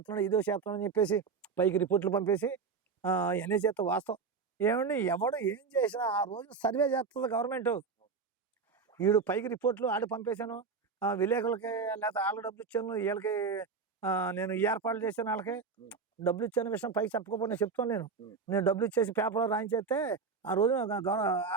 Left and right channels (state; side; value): quieter; left; 5.2 dB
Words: అని చెప్పేసి పైకి రిపోర్ట్లు పంపేసి ఇవన్నీ చేస్తా. వాస్తవం ఏమండి, ఎవడు ఏం చేసినా ఆ రోజు సర్వే చేస్తుంది గవర్నమెంట్. వీడు పైకి రిపోర్ట్లు ఆడి పంపేశాను, విలేకరులకి లేకపోతే వాళ్ళకి డబ్బులు ఇచ్చాను, వీళ్ళకి నేను ఏర్పాట్లు చేశాను, వాళ్ళకి డబ్బులు ఇచ్చాను విషయం పైకి చెప్పకపోతే నేను చెప్తాను. నేను డబ్బులు ఇచ్చేసి పేపర్లో రాయించేస్తే ఆ రోజు